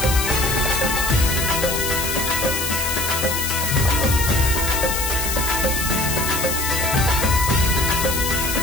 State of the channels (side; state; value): left; noise; hiss, 2 dB below the sound